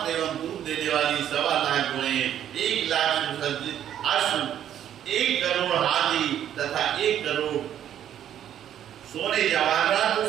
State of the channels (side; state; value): left; quieter; 10.5 dB